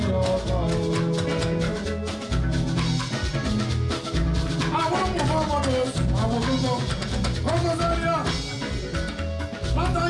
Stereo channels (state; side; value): identical; both; correlation 1.00